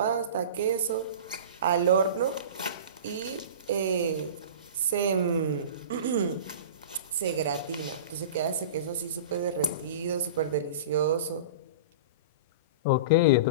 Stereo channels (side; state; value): both; inverted; correlation -0.34